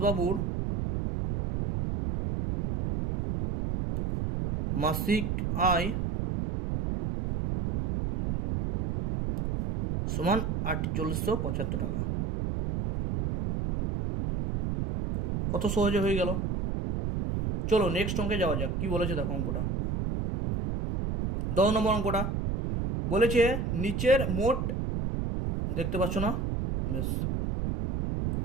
মাসিক আয় সমান 4875 টাকা। কত সহজে হয়ে গেল। চলো নেক্সট অঙ্কে যাওয়া যাক, কি বলেছে দেখো অঙ্কটা। 10 নম্বর অঙ্কটা বলেছে নিচের মোট, দেখতে পাচ্ছ না, বেশ,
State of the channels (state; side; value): noise; right; rumble, 1 dB below the sound